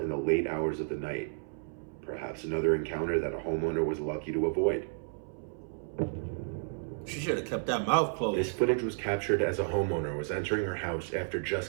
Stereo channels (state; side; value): silent; left; 56 dB below the other